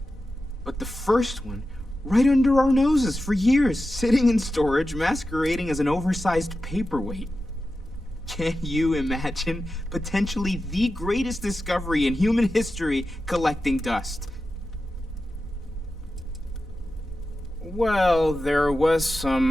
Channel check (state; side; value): normal; both; correlation 0.92